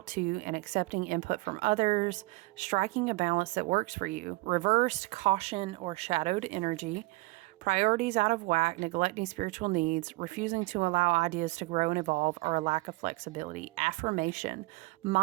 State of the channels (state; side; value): quieter; left; 22.7 dB